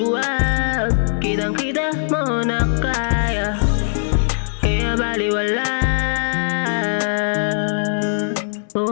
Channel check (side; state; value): right; silent; digital silence